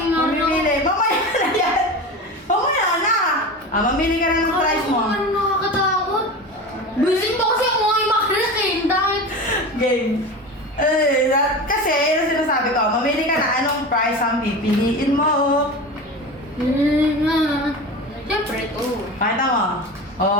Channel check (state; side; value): normal; both; correlation 0.29